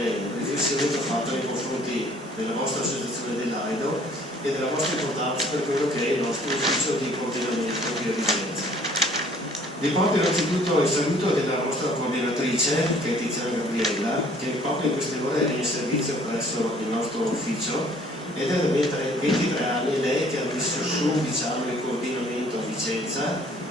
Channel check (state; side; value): normal; both; correlation 0.56